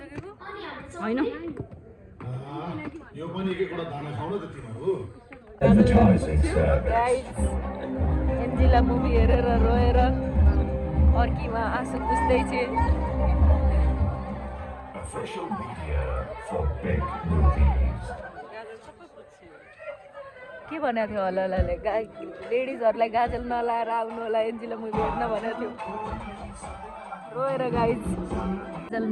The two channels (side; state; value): both; identical; correlation 1.00